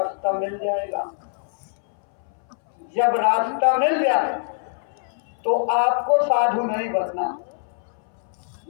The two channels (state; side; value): silent; right; 63 dB below the other